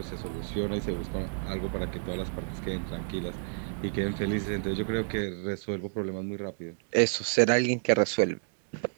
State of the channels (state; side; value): silent; left; digital silence